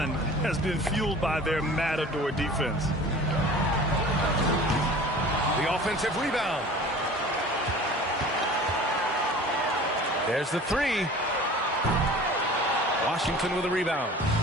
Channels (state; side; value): normal; both; correlation 0.42